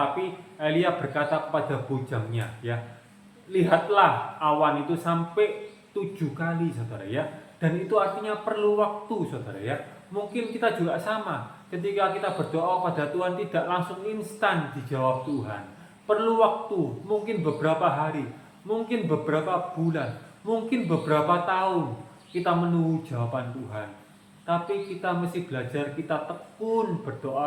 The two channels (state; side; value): identical; both; correlation 1.00